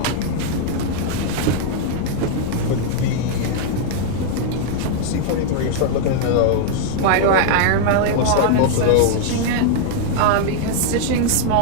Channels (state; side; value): different; both; correlation -0.01